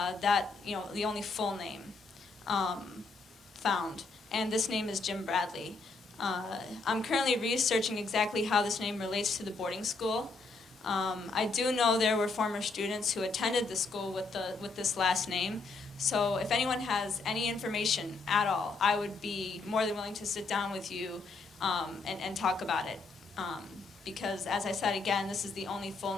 the only full name found. And this name is Jim Bradley. I'm currently researching exactly how this name relates to the boarding school. I do know there were former students who attended the school with this last name. So if anyone has any information at all, I would be more than willing to sit down with you and talk about it. Because, as I said again, this is the only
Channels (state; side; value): quieter; right; 3.9 dB